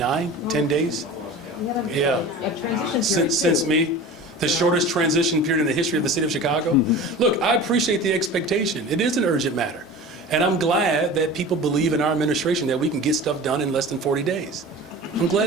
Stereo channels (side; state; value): both; normal; correlation 0.36